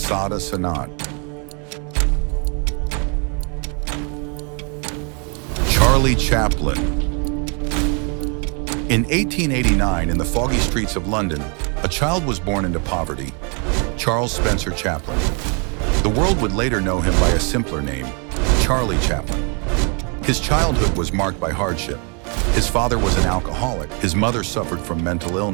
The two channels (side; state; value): left; quieter; 36.5 dB